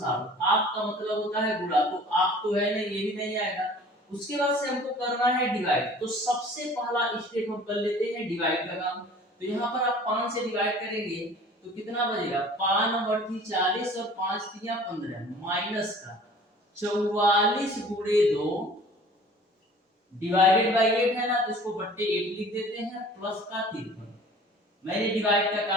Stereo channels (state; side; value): normal; both; correlation 0.47